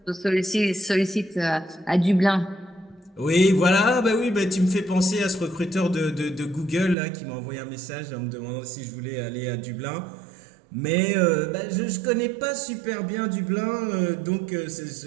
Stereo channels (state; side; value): drops out; left; at 7.0 s